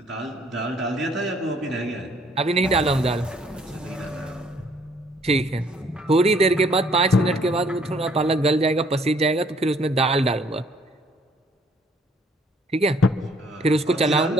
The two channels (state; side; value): normal; both; correlation 0.62